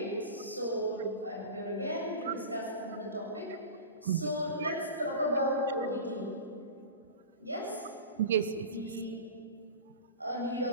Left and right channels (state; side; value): inverted; both; correlation -0.31